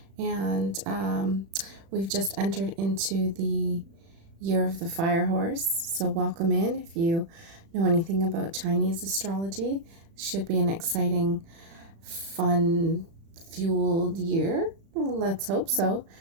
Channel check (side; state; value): left; late; 36 ms